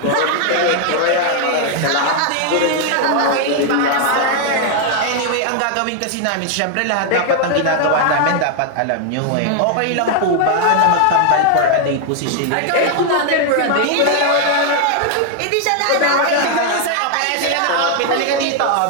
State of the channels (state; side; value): different; both; correlation 0.00